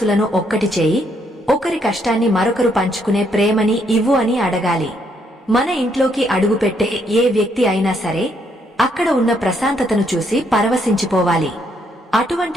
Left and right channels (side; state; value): both; normal; correlation 0.73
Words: ఒక్కటి చేయి, ఒకరి కష్టాన్ని మరొకరు పంచుకునే ప్రేమని ఇవ్వు అని అడగాలి. మన ఇంట్లోకి అడుగుపెట్టే ఏ వ్యక్తి అయినా సరే అక్కడ ఉన్న ప్రశాంతతను చూసి పరవశించిపోవాలి.